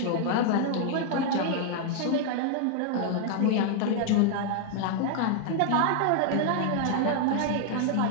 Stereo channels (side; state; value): both; different; correlation 0.00